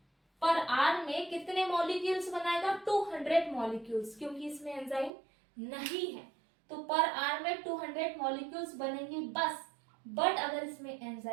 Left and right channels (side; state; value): left; drops out; at 5.1 s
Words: में कितने मॉलिक्यूल्स बनाएगा, 200 मॉलिक्यूल्स, क्योंकि इसमें एंजाइम नहीं है तो पर आर में 200 मॉलिक्यूल्स बनेंगे बस. बट अगर इसमें